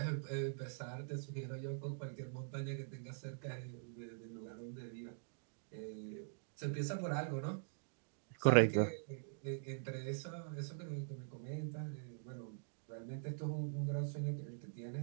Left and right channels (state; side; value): silent; left; digital silence